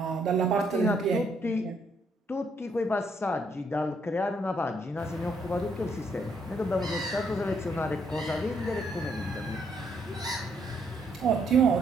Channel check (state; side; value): normal; both; correlation 0.72